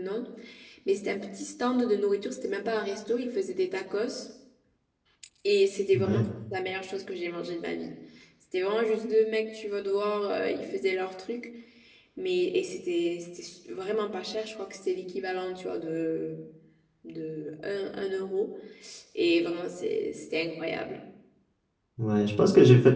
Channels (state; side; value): identical; both; correlation 1.00